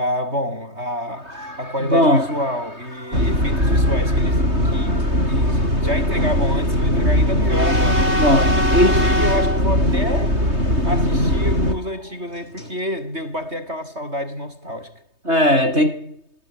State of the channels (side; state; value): left; late; 3.2 ms